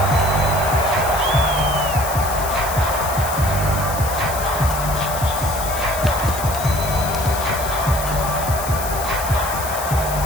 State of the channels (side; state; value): left; noise; hiss, 8 dB below the sound